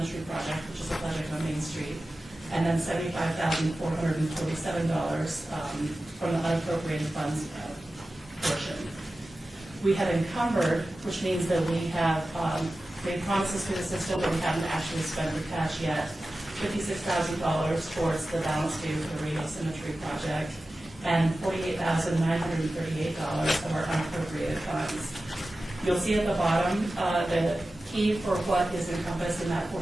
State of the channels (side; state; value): both; normal; correlation 0.95